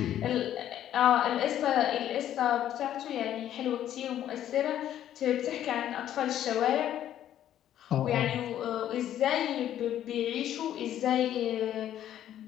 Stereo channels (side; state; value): right; quieter; 11.3 dB